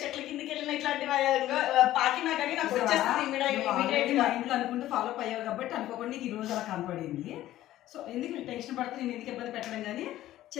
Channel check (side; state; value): right; quieter; 14.2 dB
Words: కిందకి వెళ్ళిన ఇట్లాంటివి పాకినా కానీ నాకు వచ్చేస్తుంది ఇమీడియట్ గా ఇంట్లో అనుకుంటూ ఫాలో అప్ అయ్యావు కాబట్టి అనుకోకుండా నీకు ఈ రోజు అలా కనపడింది సో ఎందుకు టెన్షన్ పడితే నేను ఎందుకు ఇబ్బంది పెట్టడం కానీ